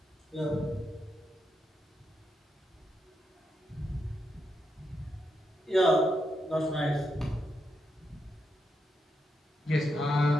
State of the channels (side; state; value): both; normal; correlation 0.83